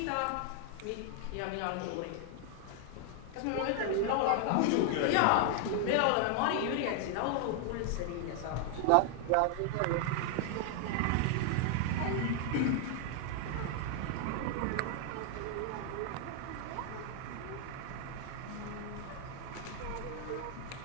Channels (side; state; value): both; different; correlation 0.00